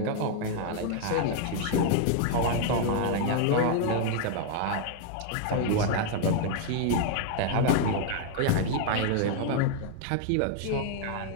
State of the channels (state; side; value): different; both; correlation 0.00